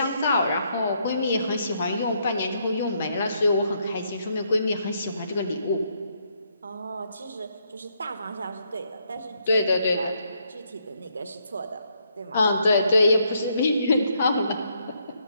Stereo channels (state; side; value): inverted; both; correlation -0.74